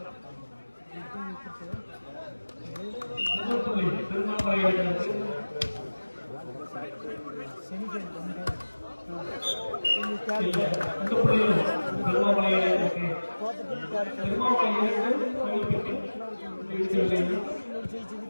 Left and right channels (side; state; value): both; inverted; correlation -1.00